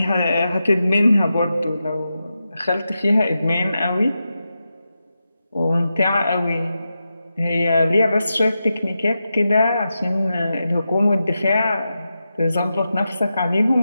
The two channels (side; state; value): both; inverted; correlation -0.90